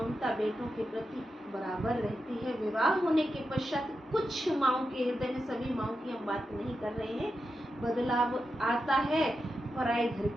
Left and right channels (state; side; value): normal; both; correlation 0.88